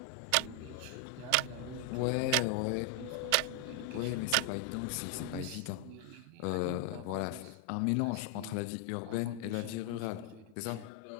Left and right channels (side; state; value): both; different; correlation 0.00